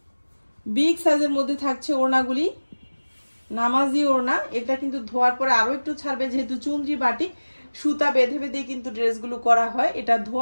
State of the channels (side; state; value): both; inverted; correlation -1.00